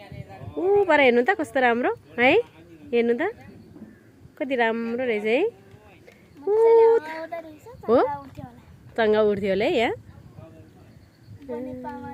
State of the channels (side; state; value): both; identical; correlation 1.00